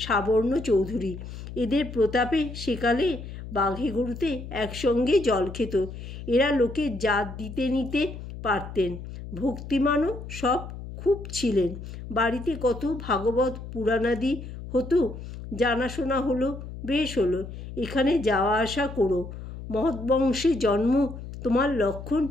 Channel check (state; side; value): noise; left; hum, 11 dB below the sound